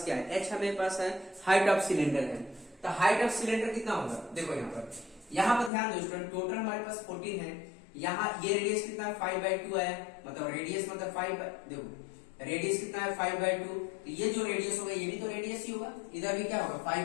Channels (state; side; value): drops out; right; at 5.7 s